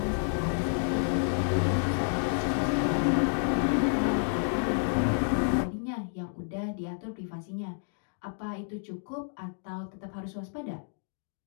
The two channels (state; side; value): silent; right; digital silence